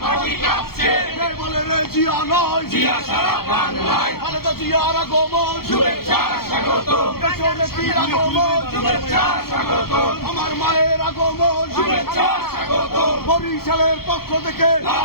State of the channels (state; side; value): late; right; 0.94 ms